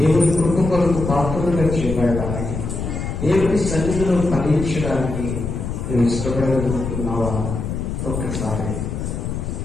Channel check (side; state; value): left; noise; rumble, 4 dB below the sound